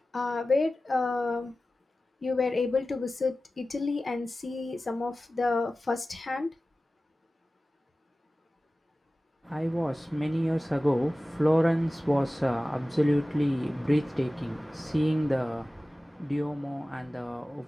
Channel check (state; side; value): normal; both; correlation 0.96